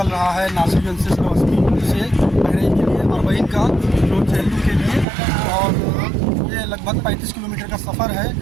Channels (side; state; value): left; drops out; at 5.1 s